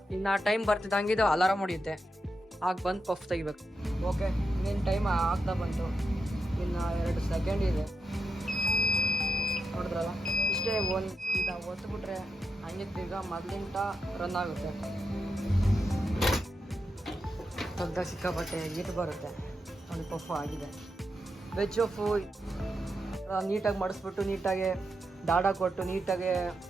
ಇನ್ನು ಟೈಮ್ ಬರ್ತಿದ್ದಂಗೆ ಇದು ಅಲಾರಾಮ್ ಹೊಡಿಯುತ್ತೆ. ಆಗ ಬಂದು ಪಫ್ ತೆಗಿಬೇಕು. ಓಕೆ, ಇನ್ನೇನು ಟೈಮ್ ಆಗ್ತಾ ಬಂತು. ಇನ್ನು 2 ಸೆಕೆಂಡ್ ಇದೆ. ನೋಡಿದ್ರಲ್ಲ, ಇಷ್ಟೇ. ಈಗ ಒತ್ತುಬಿಟ್ರೆ ಹಂಗೆ ಈಗ ಮೊದಲಿಂದ ರನ್ ಆಗುತ್ತೆ. ಸ್ವಲ್ಪ ಸಿಕ್ಕಾಪಟ್ಟೆ ಹೀಟ್ ಬರುತ್ತೆ. ಒಂದು ಪಫು ಆಗಿದೆ. ವೆಜ್ ಪಫು ನೀಟಾಗಿ ಮಡಿಸ್ಬಿಟ್ಟು, ನೀಟಾಗಿ ದಾಡ ಕೊಟ್ಟು, ನೀಟಾಗಿ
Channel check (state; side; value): normal; both; correlation 0.86